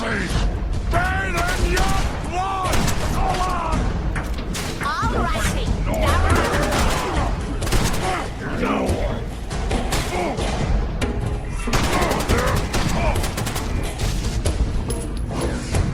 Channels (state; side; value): identical; both; correlation 1.00